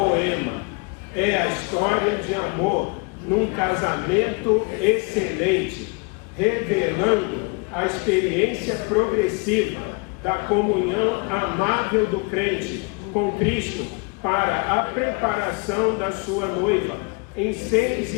é a história de amor num casamento excelente, revelando a experiência progressiva da comunhão amável do crente com Cristo para a preparação da sua noiva em 6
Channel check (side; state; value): right; quieter; 31.5 dB